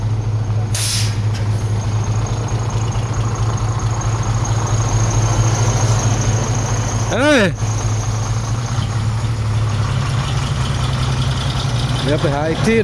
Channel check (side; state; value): both; identical; correlation 1.00